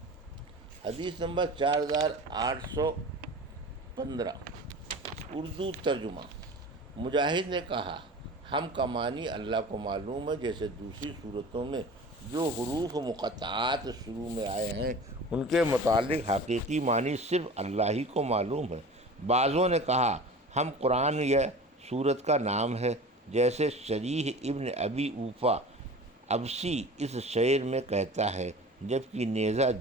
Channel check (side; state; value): both; normal; correlation 0.37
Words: حدیث نمبر 4815 اردو ترجمہ۔ مجاہد نے کہا، ہم کا معنی اللہ کو معلوم ہے، جیسے دوسری صورتوں میں جو حروف مقطعات شروع میں آئے ہیں ان کے متعلق حقیقی معنی صرف اللہ ہی کو معلوم ہے۔ بعضوں نے کہا ہم قرآن یا سورت کا نام ہے، جیسے شریح ابن ابی اوفا ابسی اس شعر میں کہتا ہے، جب کہ نیزہ